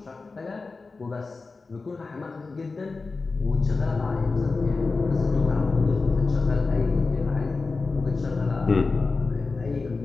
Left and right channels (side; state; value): right; quieter; 4.0 dB